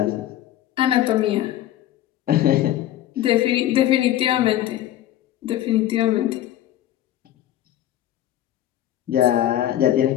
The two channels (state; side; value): quieter; right; 13.0 dB